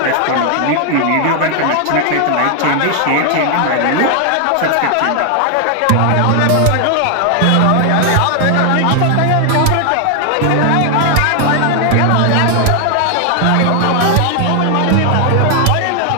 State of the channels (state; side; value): different; both; correlation 0.00